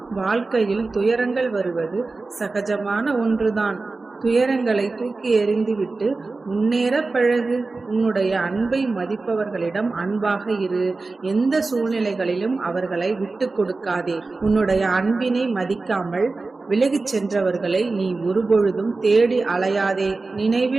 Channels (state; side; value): quieter; left; 3.7 dB